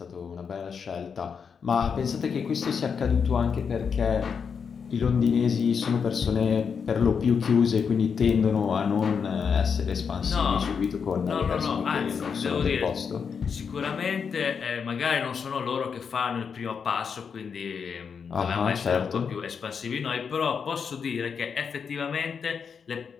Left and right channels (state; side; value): quieter; right; 6.3 dB